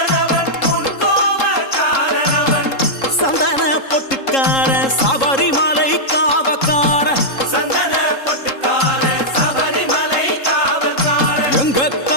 முன் கோப காரணவன். சந்தன பொட்டுக்கார சபரிமலை காவக்கார. சந்தன பொட்டுக்கார சபரிமலை காவல்கார. எங்க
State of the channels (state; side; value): late; right; 3.7 ms